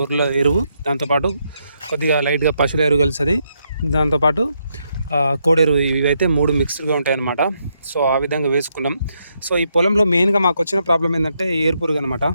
ఎరువు, దాంతోపాటు కొద్దిగా లైట్గా పశువుల ఎరువు కలిసి, దాంతోపాటు కోడెరు, ఇవైతే 3 మిక్స్డ్గా ఉంటాయన్నమాట. సో ఆ విధంగా వేసుకున్నాం. సో ఈ పొలంలో మెయిన్గా మాకు వచ్చిన ప్రాబ్లం ఏంటంటే ఏరుపురుగు అనమాట.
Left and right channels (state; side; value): inverted; both; correlation -0.78